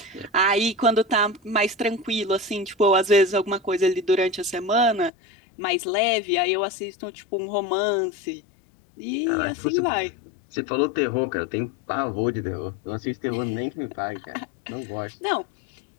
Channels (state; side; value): drops out; right; at 5.1 s